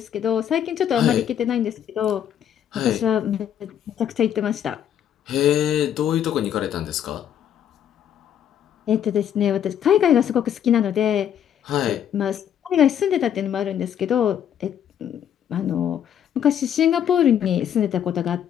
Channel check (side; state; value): right; quieter; 9.6 dB